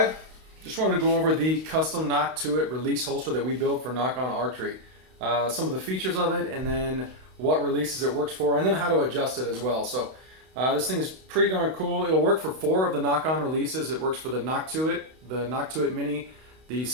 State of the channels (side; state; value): left; late; 32 ms